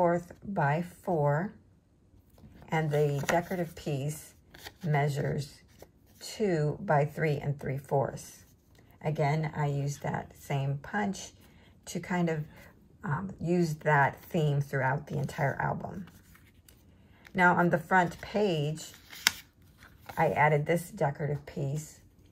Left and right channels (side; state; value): both; identical; correlation 1.00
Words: by 4, and the decorative piece measures 2 by 3 3/4. Again, I used that same punch to kind of use that theme throughout the entire album. Now on the front page, I added this decorative piece,